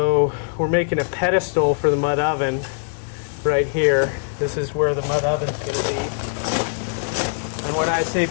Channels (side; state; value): right; silent; digital silence